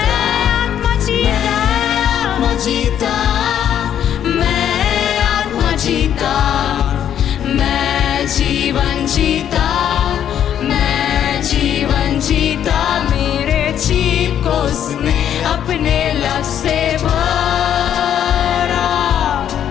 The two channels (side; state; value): right; quieter; 9.9 dB